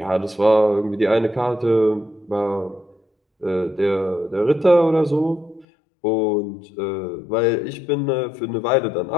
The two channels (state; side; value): drops out; right; at 5.7 s